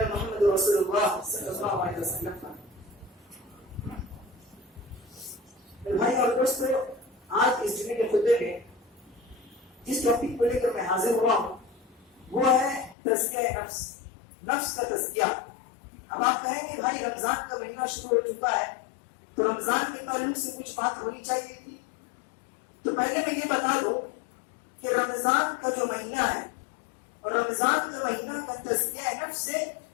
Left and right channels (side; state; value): right; drops out; at 13.0 s